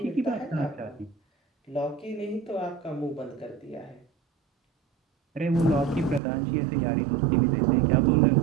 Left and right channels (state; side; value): drops out; left; at 6.2 s